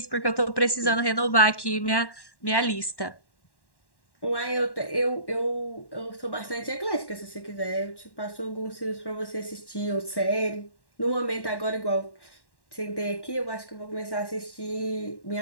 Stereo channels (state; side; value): late; right; 1.1 ms